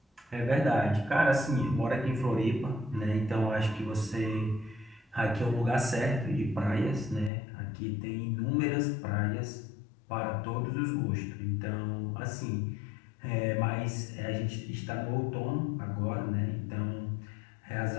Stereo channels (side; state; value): right; drops out; at 7.3 s